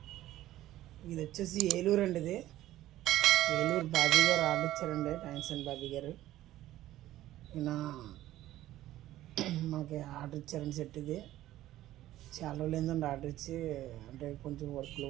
వచ్చేసి ఏలూరు అండి. ఇది ఏలూరు బాబీ గారు ఆర్డర్ ఇచ్చారండి. థ్యాంక్స్ అండి బాబీ గారు. ఈయన మనకి ఆర్డర్ ఇచ్చారండి సెట్. ఇది చాలా రోజులు ఏంటండి ఆర్డర్ ఇచ్చి, అంటే కొంచెం వర్క్ల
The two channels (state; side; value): quieter; left; 14.5 dB